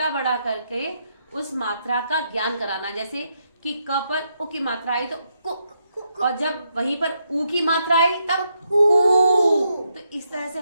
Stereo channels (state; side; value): inverted; both; correlation -0.79